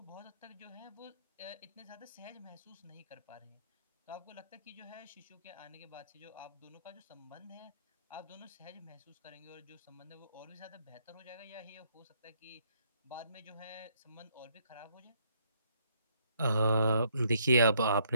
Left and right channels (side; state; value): both; inverted; correlation -0.70